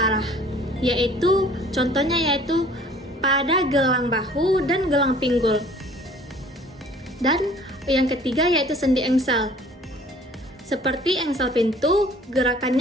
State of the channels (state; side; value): normal; both; correlation 0.52